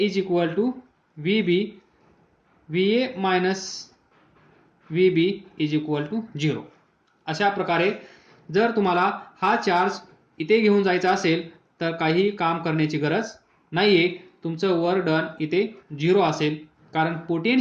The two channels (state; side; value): identical; both; correlation 1.00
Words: equal to VB, VA minus VB is equal to 0. अशा प्रकारे जर तुम्हाला हा चार्ज इथे घेऊन जायचा असेल तर काही काम करण्याची गरज नाही आहे, तुमचं वर्क डन इथे 0 असेल, कारण